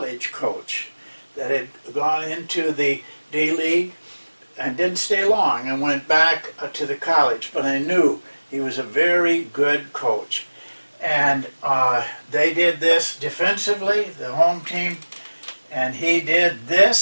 coach that had gone into the D-League and didn't stay long and went back to the college. But I knew he was a very good coach. And they did this defensively, the home team, and he did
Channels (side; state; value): both; inverted; correlation -1.00